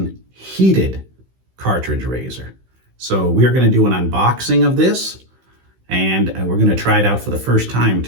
heated cartridge razor. So we're going to do an unboxing of this, and we're going to try it out for the first time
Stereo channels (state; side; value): late; left; 16 ms